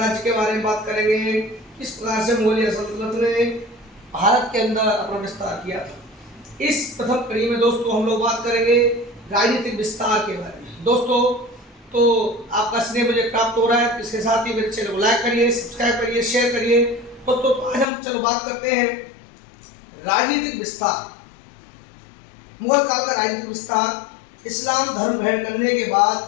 के बारे में बात करेंगे, किस प्रकार से मुगलिया सल्तनत ने भारत के अंदर अपना विस्तार किया था। इस प्रथम कड़ी में दोस्तों हम लोग बात करेंगे राजनीतिक विस्तार के बारे में। दोस्तों तो आपका स्नेह मुझे प्राप्त हो रहा है, इसके साथ ही मेरे चैनल को लाइक करिए, सब्सक्राइब करिए, शेयर करिए। दोस्तों आज हम चलो बात करते हैं राजनीतिक विस्तार। मुगल काल का राजनीतिक विस्तार। इस्लाम धर्म ग्रहण करने के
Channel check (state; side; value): drops out; right; at 17.9 s